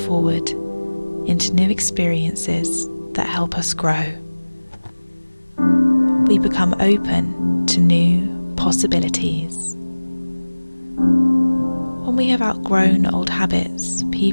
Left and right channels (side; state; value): both; inverted; correlation -1.00